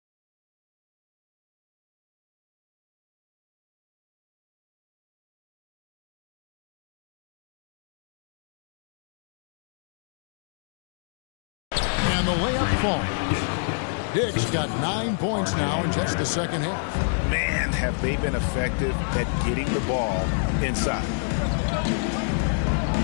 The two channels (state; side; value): silent; right; digital silence